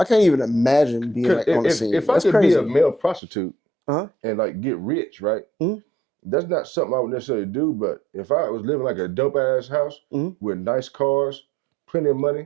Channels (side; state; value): left; drops out; at 3.2 s